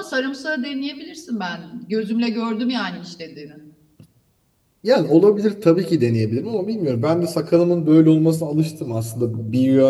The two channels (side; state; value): both; identical; correlation 1.00